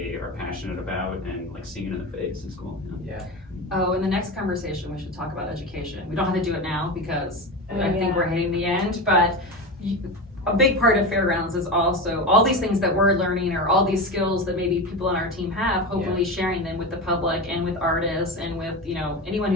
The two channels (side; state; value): both; normal; correlation 0.23